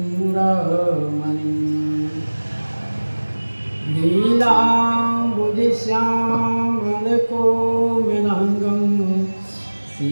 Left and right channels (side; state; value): both; inverted; correlation -1.00